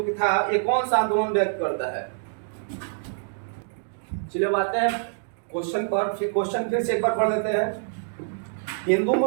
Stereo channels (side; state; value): left; silent; digital silence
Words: था ये कौन सा आंदोलन व्यक्त करता है? चलिए आते हैं क्वेश्चन पर, क्वेश्चन फिर से एक बार पढ़ लेते हैं। हिंदू